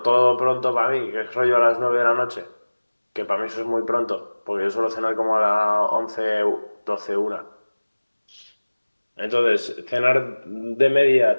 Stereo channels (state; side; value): inverted; both; correlation -1.00